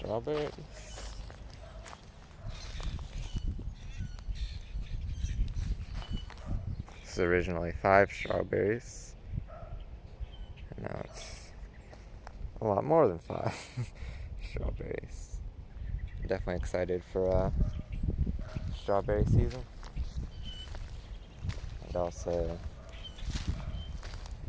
This is originally 5 strawberries, and now it's a lot more than 5 strawberries. I'm definitely excited for strawberry season, and also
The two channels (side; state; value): both; identical; correlation 1.00